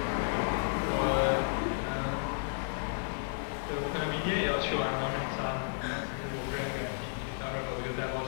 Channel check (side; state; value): right; silent; digital silence